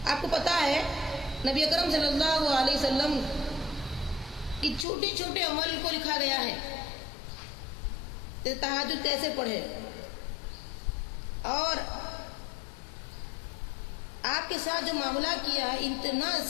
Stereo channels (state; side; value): drops out; right; at 4.9 s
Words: آپ کو پتا ہے نبی اکرم صلی اللہ علیہ وسلم کی چھوٹے چھوٹے عمل کو لکھا گیا ہے، تہجد کیسے پڑھے، اور آپ کے ساتھ جو معاملہ کیا ہے اتنا